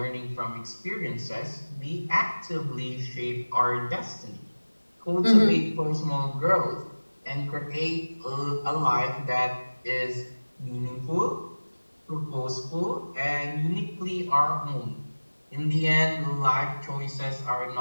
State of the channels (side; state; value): both; inverted; correlation -1.00